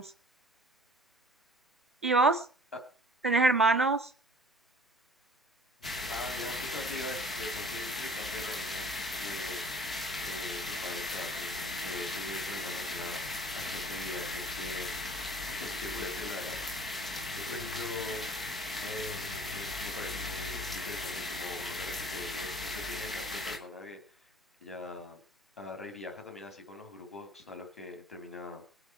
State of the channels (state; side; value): normal; both; correlation 0.49